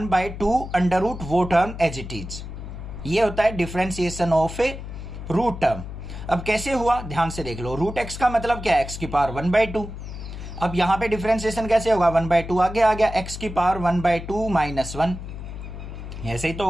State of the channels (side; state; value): left; noise; hum, 10 dB below the sound